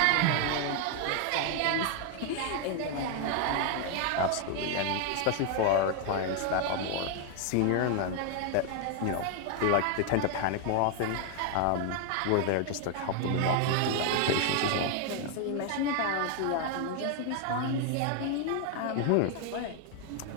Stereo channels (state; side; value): different; both; correlation 0.01